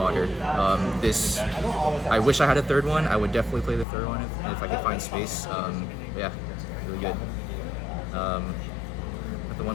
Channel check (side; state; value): right; drops out; at 3.9 s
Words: This, I wish I had a 3rd one. I would definitely play the 3rd one if I could find space. Yeah, really good. The